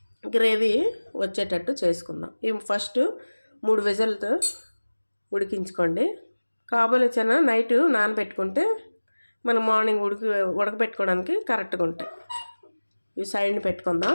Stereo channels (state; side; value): inverted; both; correlation -1.00